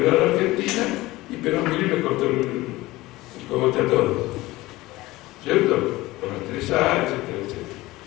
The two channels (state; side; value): quieter; right; 18.9 dB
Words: a la Argentina, y Perón vino y le cortó el cogote a todos. ¿Cierto? Por las 3A, etcétera, etcétera.